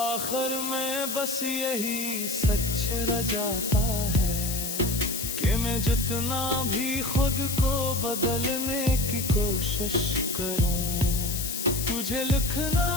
में बस यही सच रह जाता है कि मैं जितना भी खुद को बदलने की कोशिश करूं, तुझे लिखना,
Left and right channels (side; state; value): left; noise; hiss, 4 dB below the sound